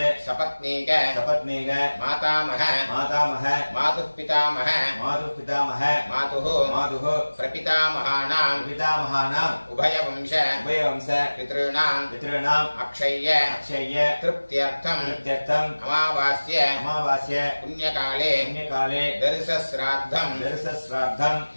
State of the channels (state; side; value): inverted; both; correlation -1.00